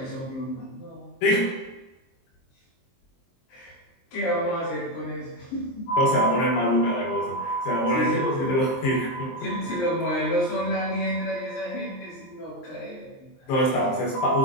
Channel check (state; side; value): late; right; 23 ms